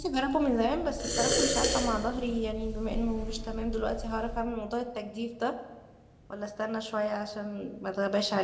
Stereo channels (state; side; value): identical; both; correlation 1.00